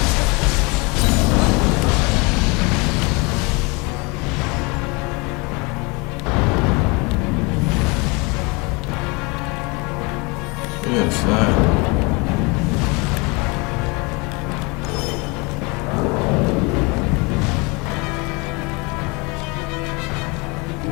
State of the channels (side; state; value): right; quieter; 28.0 dB